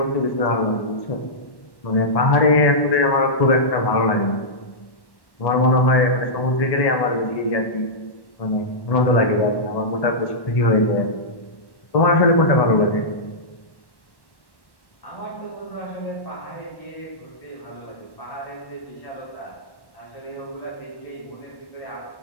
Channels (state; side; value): late; right; 1.1 ms